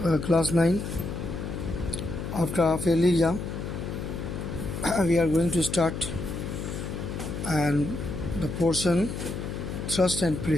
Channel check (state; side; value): noise; left; hum, 5 dB below the sound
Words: class 9. After half yearly exam, we are going to start and the portion thrust and